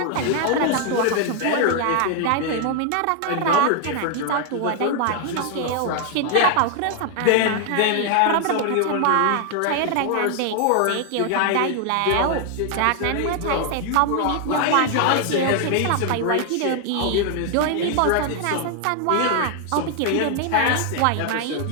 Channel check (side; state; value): both; different; correlation 0.00